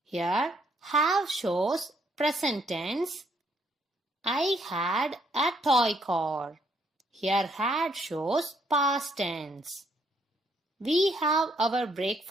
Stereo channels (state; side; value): normal; both; correlation 0.70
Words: Here, have shows present tense. I had a toy car. Here, had shows past tense. We have our